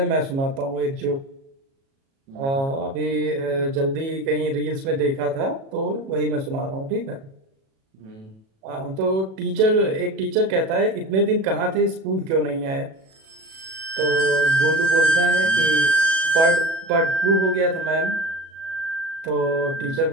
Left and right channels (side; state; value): left; late; 37 ms